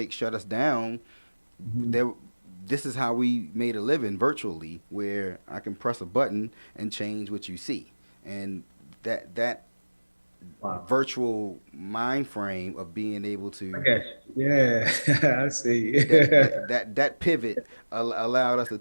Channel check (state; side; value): inverted; both; correlation -1.00